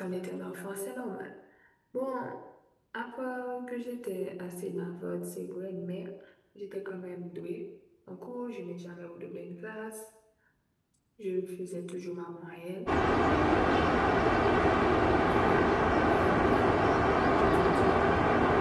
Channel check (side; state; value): both; identical; correlation 1.00